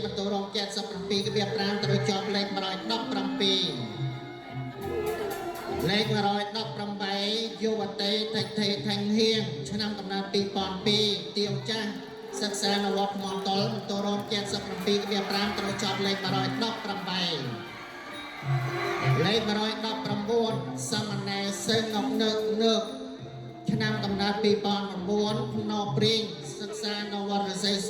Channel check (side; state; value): both; identical; correlation 1.00